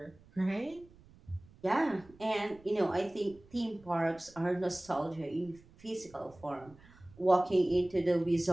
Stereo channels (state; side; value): noise; right; rumble, 25 dB below the sound